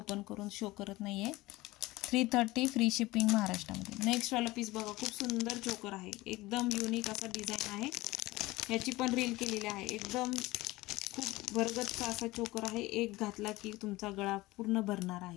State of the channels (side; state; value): right; quieter; 19.6 dB